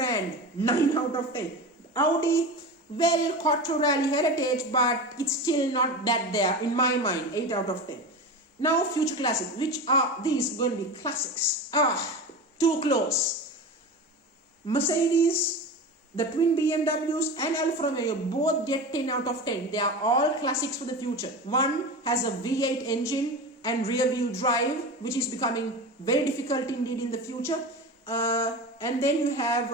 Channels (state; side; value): normal; both; correlation 0.27